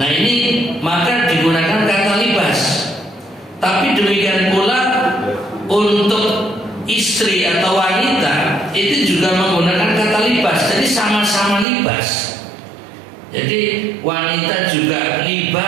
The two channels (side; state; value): left; drops out; at 11.7 s